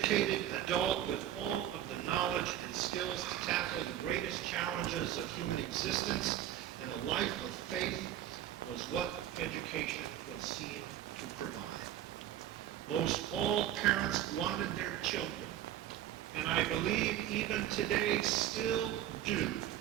adult with all of the knowledge and skills to tackle the greatest challenges of human existence, and a life of faith was what education was seen to provide. Most all parents wanted their children, and I believe even today still do.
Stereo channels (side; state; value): left; quieter; 11.9 dB